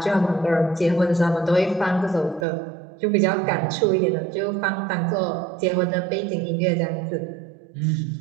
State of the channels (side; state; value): left; drops out; at 2.5 s